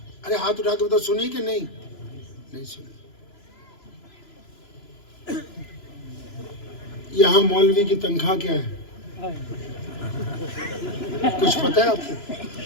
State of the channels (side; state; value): right; late; 3.0 ms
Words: ارے ہاتھ اٹھا کے بتاؤ، سنی کہ نہیں؟ نہیں سنی۔ یہاں مولوی کی تنخواہ کیا ہے؟ کچھ پتہ ہے آپ کو؟